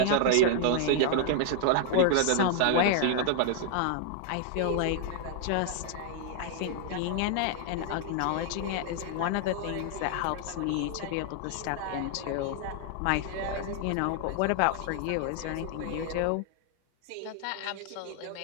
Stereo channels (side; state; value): both; different; correlation 0.00